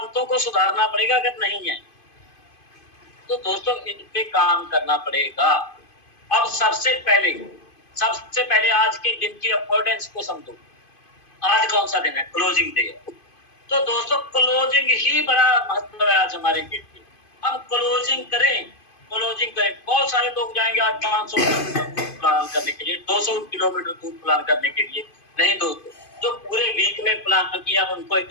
को सुधारना पड़ेगा। अगर नहीं है तो दोस्तों इन पे काम करना पड़ेगा। अब सबसे पहले आज के दिन की इंपॉर्टेंस को समझो। आज कौन सा दिन है? क्लोजिंग डे है। तो दोस्तों क्लोजिंग ही बड़ा महत्व है आज हमारे के लिए। हम क्लोजिंग करें। बहुत सारे लोग जाएंगे आज 500 किलोमीटर दूर प्लान करने के लिए, 200 किलोमीटर दूर प्लान करने के लिए। नहीं दोस्तों, जो पूरे वीक में प्लान किया उनको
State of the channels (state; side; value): late; right; 2.5 ms